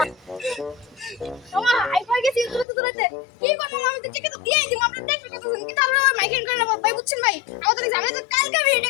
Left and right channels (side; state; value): right; drops out; at 2.7 s